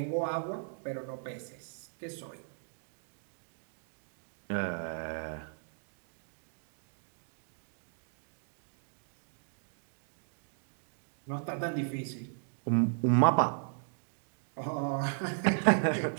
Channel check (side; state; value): left; silent; digital silence